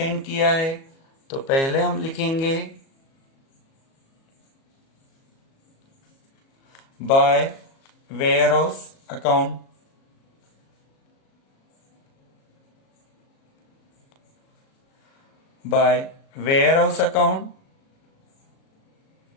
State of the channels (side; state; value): right; late; 37 ms